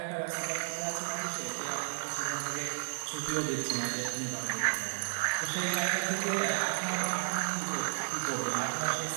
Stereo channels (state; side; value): silent; left; 56 dB below the other